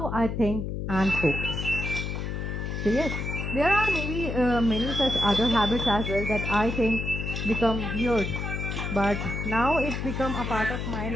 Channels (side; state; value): left; noise; hum, 4 dB below the sound